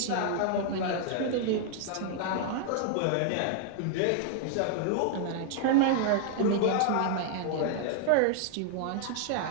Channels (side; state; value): both; different; correlation 0.00